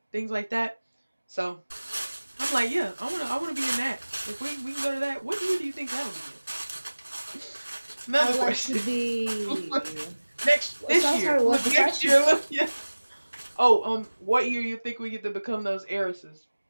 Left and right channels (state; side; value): inverted; both; correlation -1.00